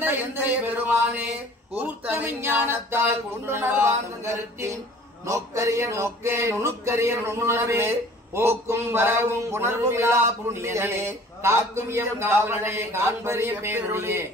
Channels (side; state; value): both; normal; correlation 0.49